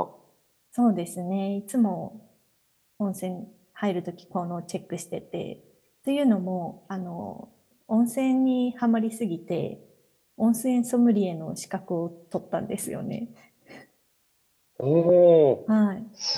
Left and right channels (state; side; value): identical; both; correlation 1.00